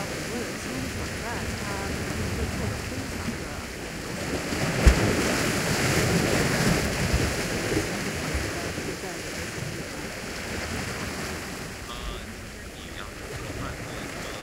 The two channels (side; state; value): both; identical; correlation 1.00